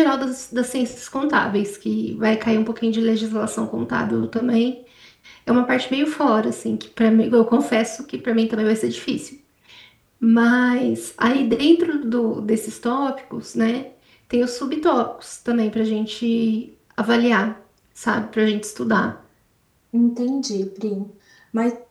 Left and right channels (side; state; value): both; identical; correlation 1.00